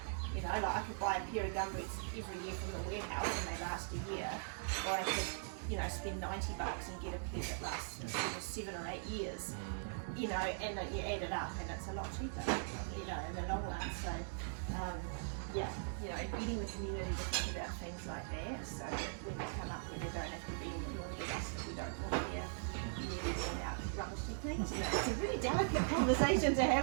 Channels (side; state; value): left; silent; digital silence